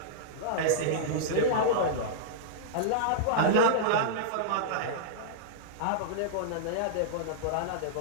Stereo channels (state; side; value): different; both; correlation -0.03